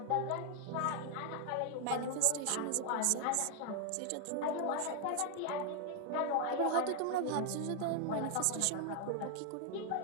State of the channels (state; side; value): different; both; correlation 0.00